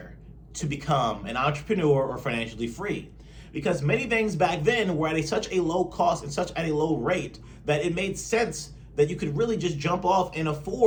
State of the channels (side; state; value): both; identical; correlation 1.00